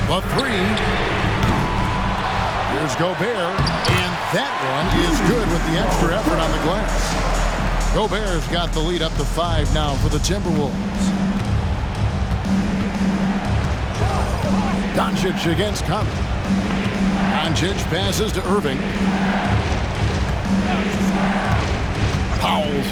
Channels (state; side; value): identical; both; correlation 1.00